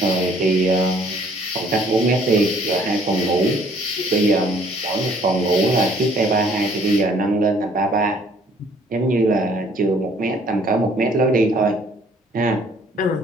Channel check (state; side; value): normal; both; correlation 0.60